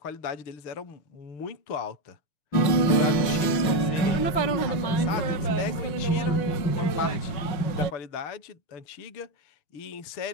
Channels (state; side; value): late; right; 6.1 ms